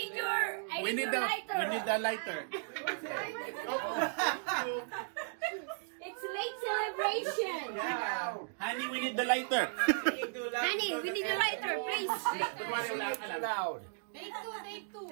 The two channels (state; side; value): silent; left; digital silence